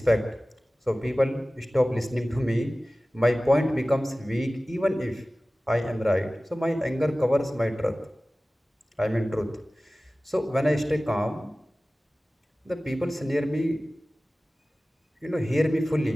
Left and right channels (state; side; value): normal; both; correlation 0.97